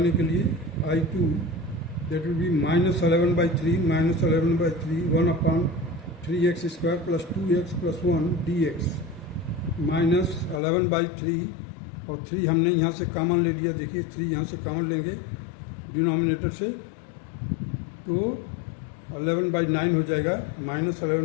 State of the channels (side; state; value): right; drops out; at 10.6 s